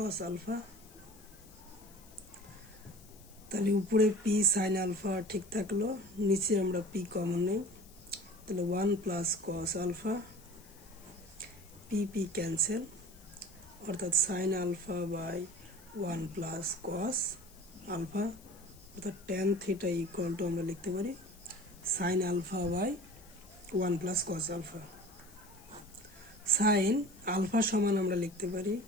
আলফা। তাহলে উপরে পি সাইন আলফা ঠিক থাকলো, নিচে আমরা পি কমন নেই, তাহলে 1 plus cos alpha, P P cancel, অর্থাৎ sine alpha by 1 plus cos alpha, অর্থাৎ tan থিটা ইকুয়াল টু আমরা লিখতে পারি sine alpha by 1 plus cos alpha. Sine alpha সমান আমরা লিখতে পারি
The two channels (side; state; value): left; noise; hiss, 23 dB below the sound